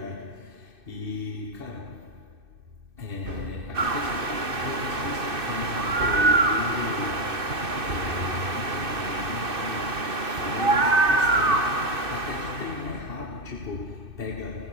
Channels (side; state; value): left; late; 2.6 ms